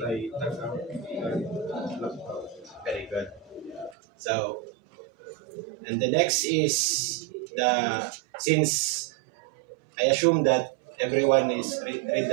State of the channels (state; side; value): drops out; left; at 4.0 s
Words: very good. So and the next is the since I assume that everyone is read